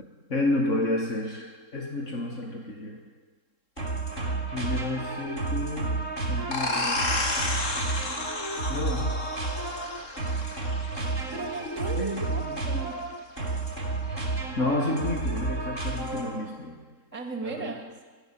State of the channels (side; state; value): right; late; 3.7 ms